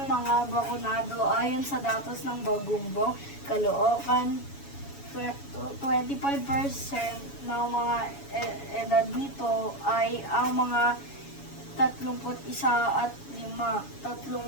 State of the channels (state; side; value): late; right; 7.1 ms